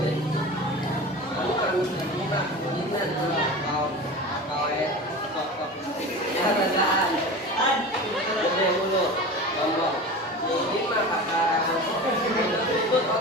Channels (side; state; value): both; normal; correlation 0.32